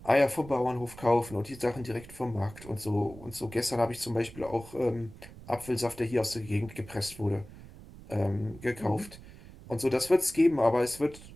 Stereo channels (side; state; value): right; noise; rumble, 18 dB below the sound